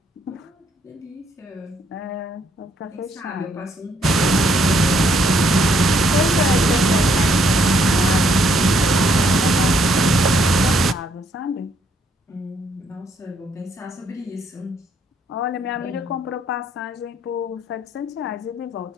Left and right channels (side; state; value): both; normal; correlation 0.70